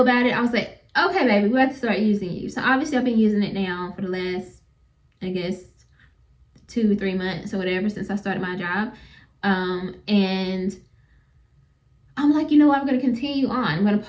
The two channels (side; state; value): both; identical; correlation 1.00